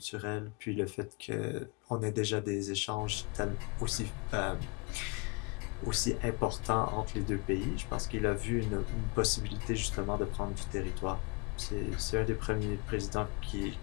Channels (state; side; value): quieter; right; 30.0 dB